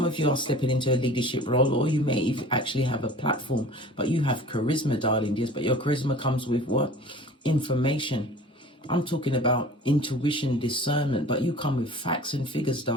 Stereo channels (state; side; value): normal; both; correlation 0.43